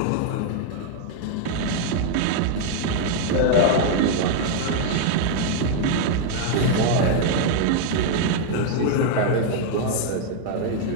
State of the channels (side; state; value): both; different; correlation 0.00